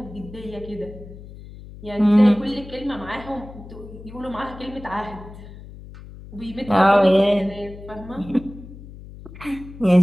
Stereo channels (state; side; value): noise; left; hum, 16 dB below the sound